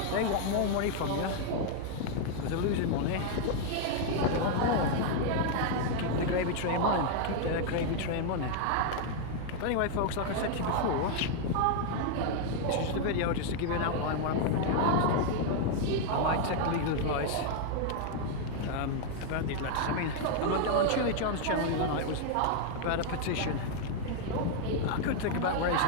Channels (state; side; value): different; both; correlation 0.00